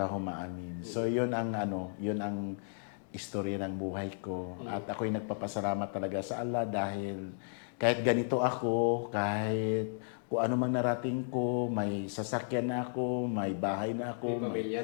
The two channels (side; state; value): right; silent; digital silence